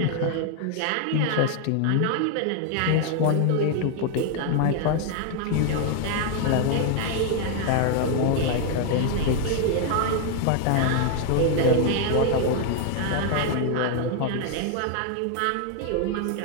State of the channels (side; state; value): both; different; correlation 0.00